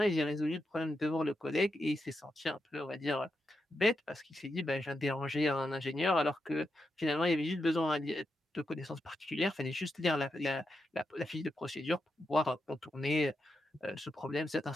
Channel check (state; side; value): normal; both; correlation 0.85